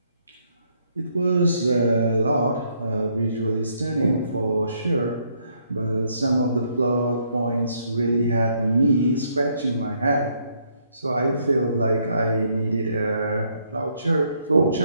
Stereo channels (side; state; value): both; inverted; correlation -0.71